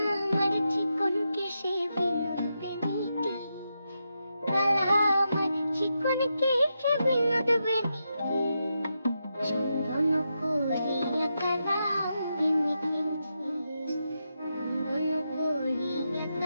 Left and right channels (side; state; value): both; inverted; correlation -0.86